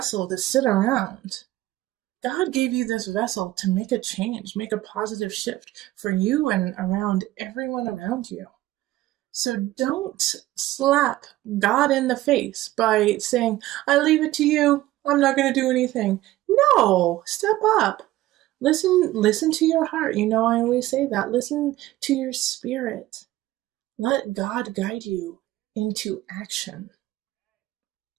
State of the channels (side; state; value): left; quieter; 16.2 dB